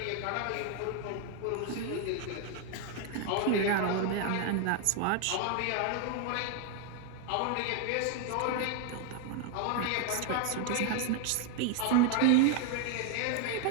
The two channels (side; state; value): both; different; correlation 0.01